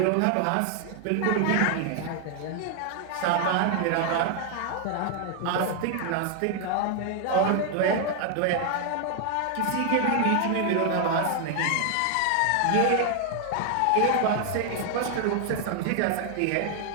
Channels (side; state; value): both; different; correlation 0.00